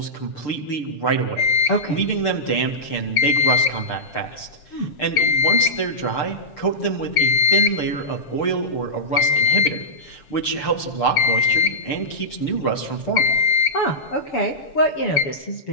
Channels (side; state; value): right; late; 6.7 ms